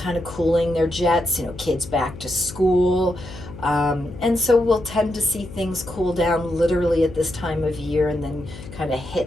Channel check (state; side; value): noise; left; hum, 14 dB below the sound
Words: of cooling their jets, kids back to school. And so we'll tend to see things cool down literally at this time of year and then kind of